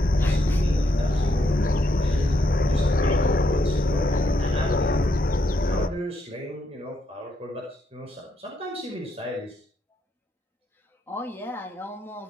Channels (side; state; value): both; normal; correlation 0.77